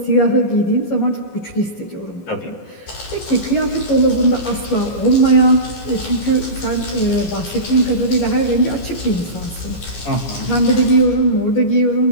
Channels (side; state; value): right; late; 14 ms